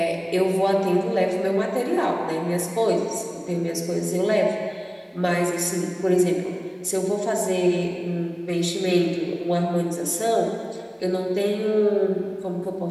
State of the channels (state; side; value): identical; both; correlation 1.00